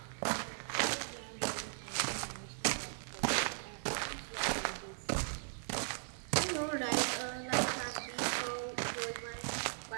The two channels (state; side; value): silent; left; digital silence